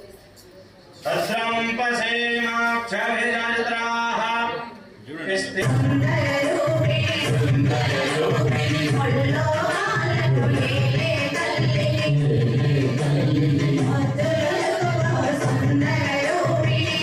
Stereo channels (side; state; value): both; identical; correlation 1.00